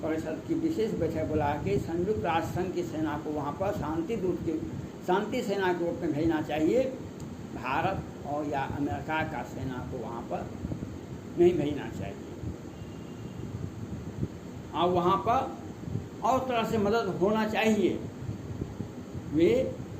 परिषद की विशेष बैठक बुला के संयुक्त राष्ट्र संघ की सेना को वहाँ पर शांति सेना के रूप में भेजना चाहिए। भारत और या अमेरिका का सेना को वहाँ पर नहीं भेजना चाहिए, और वहाँ पर और तरह से मदद होना चाहिए। वे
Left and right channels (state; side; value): identical; both; correlation 1.00